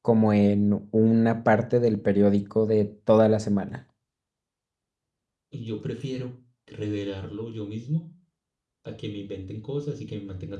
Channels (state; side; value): identical; both; correlation 1.00